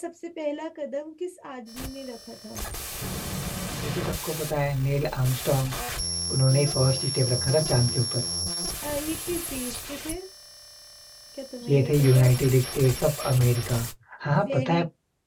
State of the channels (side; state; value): both; identical; correlation 1.00